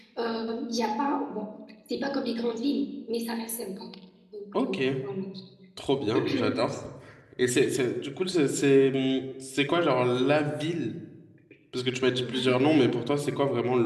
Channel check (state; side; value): identical; both; correlation 1.00